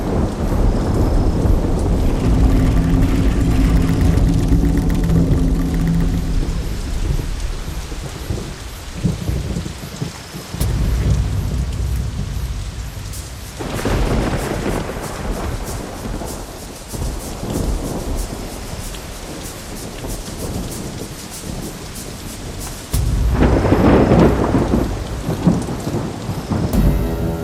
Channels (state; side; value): identical; both; correlation 1.00